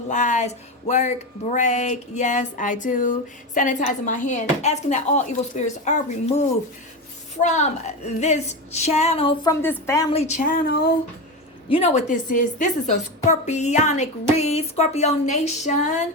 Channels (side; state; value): both; normal; correlation 0.18